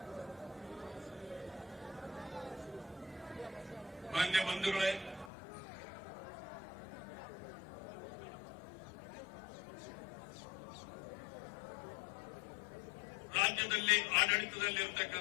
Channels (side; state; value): right; drops out; at 5.3 s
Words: ಮಾನ್ಯ ಬಂಧುಗಳೇ, ರಾಜ್ಯದಲ್ಲಿ